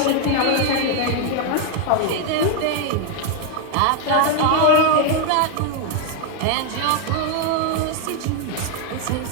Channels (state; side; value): different; both; correlation 0.01